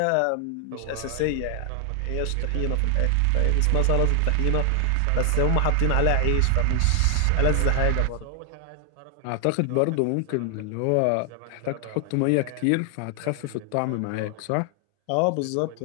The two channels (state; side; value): different; both; correlation 0.00